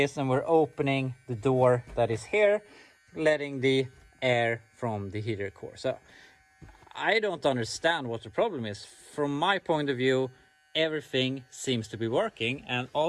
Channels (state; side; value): identical; both; correlation 1.00